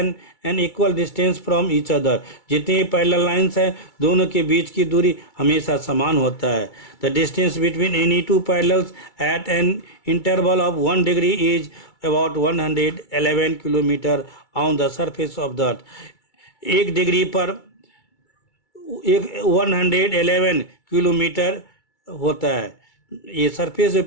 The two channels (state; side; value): late; right; 2.3 ms